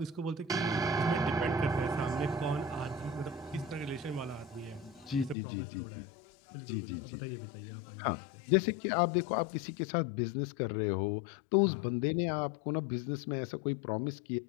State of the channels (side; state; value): right; drops out; at 5.4 s